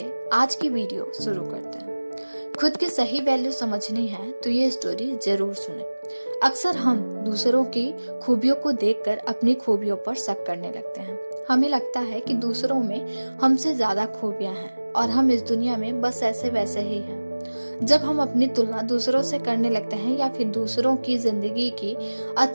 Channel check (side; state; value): both; inverted; correlation -1.00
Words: आज की वीडियो शुरू करते हैं। खुद की सही वैल्यू समझनी है तो ये स्टोरी जरूर सुने। अक्सर हम दूसरों की खूबियों को देखकर अपनी खूबियों पर शक करने लगते हैं। हमें लगता है कि दूसरों में हमसे ज्यादा खूबियां हैं और हम इस दुनिया में बस ऐसे वैसे ही हैं। जब हम अपनी तुलना दूसरों से करने लगते हैं या फिर दूसरों की जिंदगी की